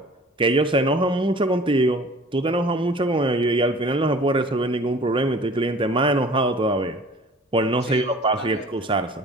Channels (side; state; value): both; normal; correlation 0.47